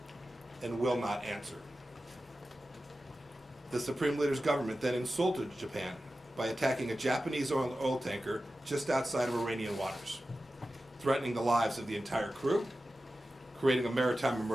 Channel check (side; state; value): both; normal; correlation 0.94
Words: and will not answer. The supreme leader's government then insulted Japan by attacking a Japanese oil tanker just outside of Iranian waters, threatening the lives of the entire crew, creating a maritime